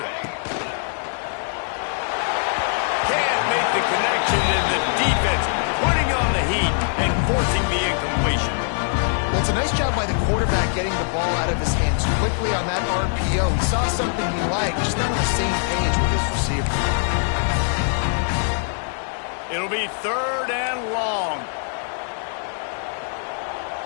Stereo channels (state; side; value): silent; right; digital silence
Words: Can't make the connection, and the defense putting on the heat and forcing the incompletion. Well, it's a nice job by the quarterback getting the ball out of his hands quickly on that RPO. He saw something he liked, just not on the same page with his receiver. It'll be 3rd and long.